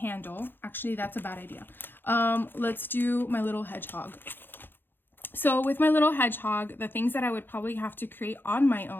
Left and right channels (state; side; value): late; right; 0.099 ms